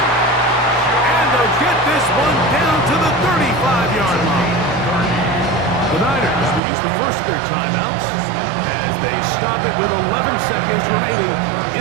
And they'll get this one down to the 35-yard line. The Niners use the first of their timeouts as they stop it with 11 seconds remaining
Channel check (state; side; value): drops out; left; at 6.6 s